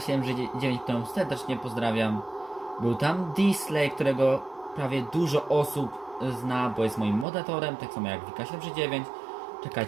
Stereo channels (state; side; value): drops out; left; at 7.2 s